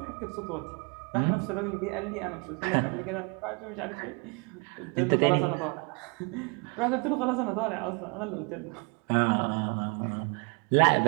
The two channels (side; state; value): left; quieter; 33.0 dB